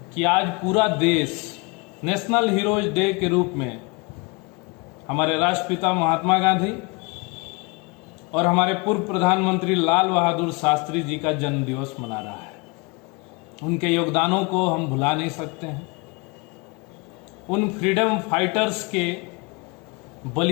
कि आज पूरा देश नेशनल हीरोज डे के रूप में हमारे राष्ट्रपिता महात्मा गांधी और हमारे पूर्व प्रधानमंत्री लाल बहादुर शास्त्री जी का जन्म दिवस मना रहा है। उनके योगदानों को हम भुला नहीं सकते हैं। उन फ्रीडम फाइटर्स के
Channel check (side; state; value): right; quieter; 28.9 dB